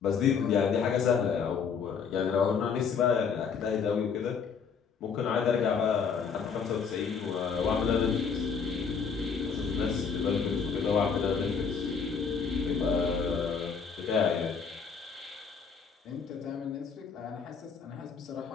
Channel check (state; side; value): quieter; right; 6.1 dB